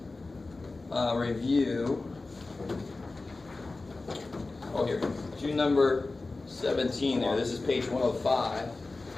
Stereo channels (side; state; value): right; quieter; 3.4 dB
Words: review. Oh, here. Do number 17 there. This is page 105.